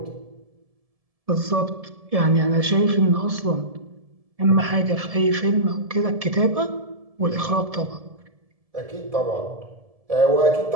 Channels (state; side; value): late; left; 1.7 ms